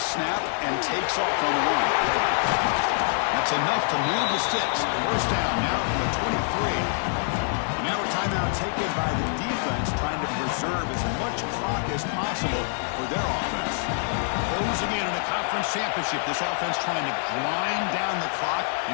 and takes off on the run. That's enough to move the sticks. First down now from the 23. And now a timeout taken by the defense, trying to preserve as much clock as possible for their offense. Closing in on a conference championship, this offense trying to grind down the clock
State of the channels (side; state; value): right; silent; 61 dB below the other